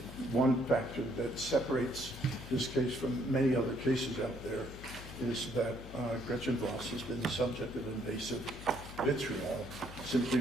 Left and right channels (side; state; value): left; noise; hum, 13 dB below the sound